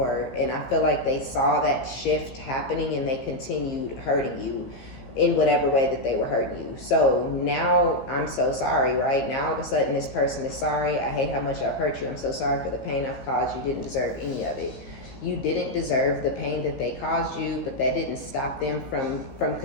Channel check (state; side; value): late; right; 15 ms